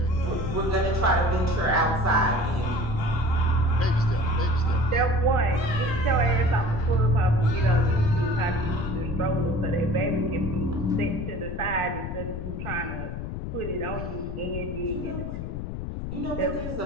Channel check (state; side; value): noise; left; rumble, 6 dB below the sound